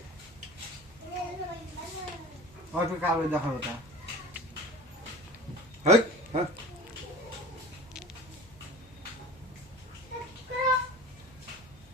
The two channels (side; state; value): both; normal; correlation 0.37